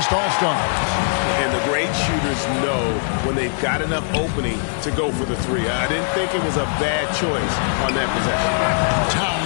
All-Stars. And the great shooters know when they've got enough opening to go for the 3. I didn't think it was a bad choice on that possession.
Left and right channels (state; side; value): silent; right; digital silence